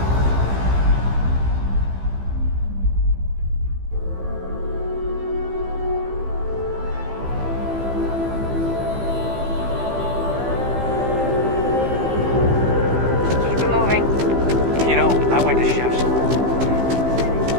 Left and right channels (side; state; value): left; late; 15 ms